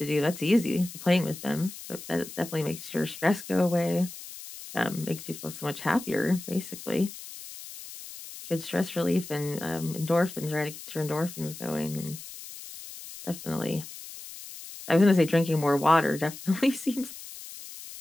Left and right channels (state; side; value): noise; left; hiss, 13 dB below the sound